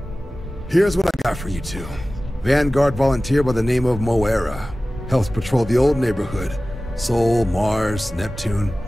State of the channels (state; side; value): normal; both; correlation 0.96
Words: Here's what I got for you two. Vanguard volunteer by the name of Moera. Helps patrol the old neighborhood. Sol, Mars, Neptune,